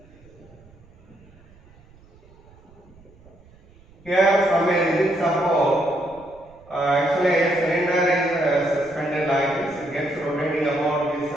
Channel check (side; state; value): right; noise; rumble, 26 dB below the sound